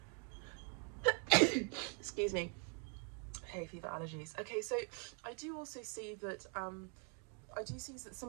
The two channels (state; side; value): quieter; left; 38.9 dB